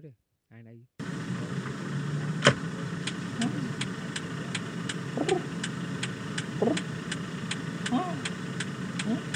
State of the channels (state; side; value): identical; both; correlation 1.00